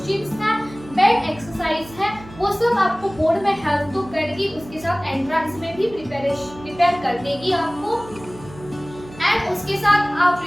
है, बेड एक्सरसाइज है, वो सब आपको बोर्ड में हेल्प तो करेगी, उसके साथ एंट्रेंस में भी प्रिपेयर कर देगी आपको। एंड उसके साथ आप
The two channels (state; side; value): noise; right; hum, 18 dB below the sound